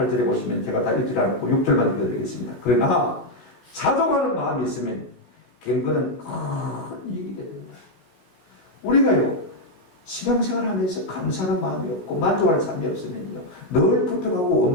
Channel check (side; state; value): right; late; 17 ms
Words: 보시면 제가 다 읽지 않고 6절만 읽어드리겠습니다. 그러나 자족하는 마음이 있으면 경건은 큰 이익이 됩니다. 우리가요, 신앙생활 하면서 감사하는 마음이 없고 만족하는 삶이 없으면요, 늘 불평하고